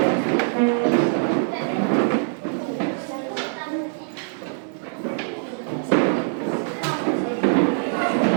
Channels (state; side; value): silent; left; digital silence